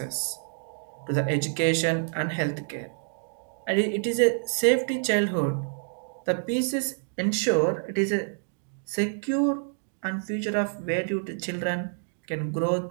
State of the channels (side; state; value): left; silent; digital silence